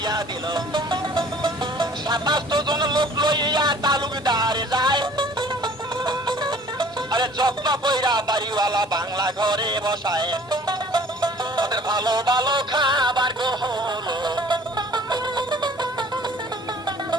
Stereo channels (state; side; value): normal; both; correlation 0.51